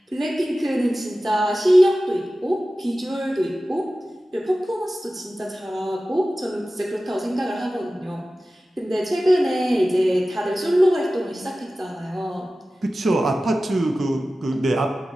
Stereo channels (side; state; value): both; normal; correlation 0.95